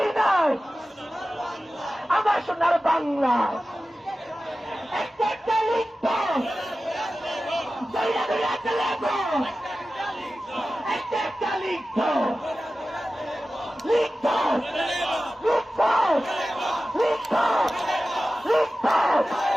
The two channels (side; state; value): both; normal; correlation 0.95